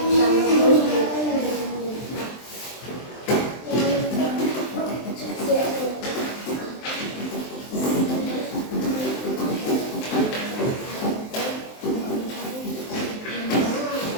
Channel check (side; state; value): right; late; 23 ms